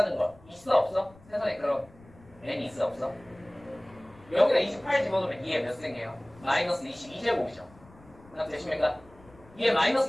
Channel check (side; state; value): left; noise; rumble, 25 dB below the sound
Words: 거 있어 없어? 세상에 그런 n이 있어 없어? 여기다 28 집어넣으면 2에 몇 생겨요? 마이너스 22제곱이죠. 되십니까? 2에 마이너스